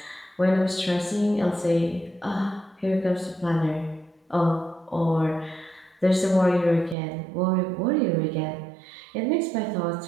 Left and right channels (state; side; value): drops out; left; at 7.0 s